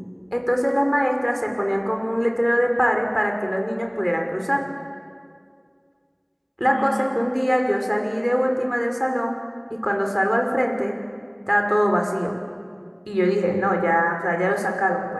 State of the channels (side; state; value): both; identical; correlation 1.00